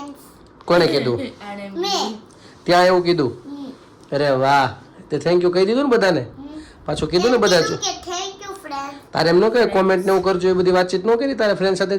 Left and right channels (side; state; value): both; identical; correlation 1.00